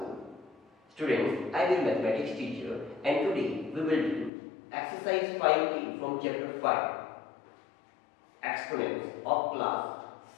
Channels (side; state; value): right; drops out; at 4.3 s